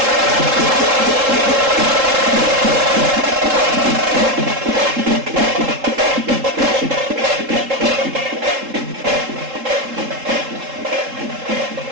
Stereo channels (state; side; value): late; left; 3.7 ms